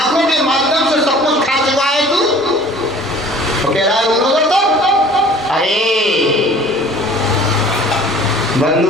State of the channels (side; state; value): both; normal; correlation 0.49